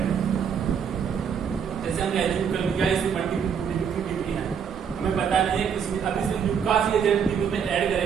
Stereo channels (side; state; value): left; quieter; 7.3 dB